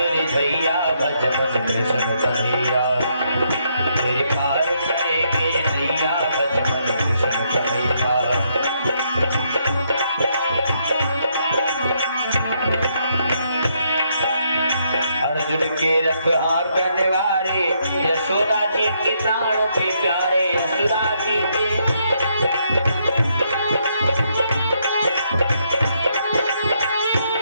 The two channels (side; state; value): both; inverted; correlation -0.74